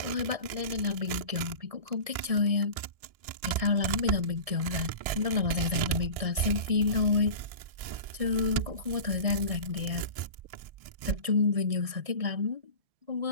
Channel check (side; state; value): left; late; 1.6 ms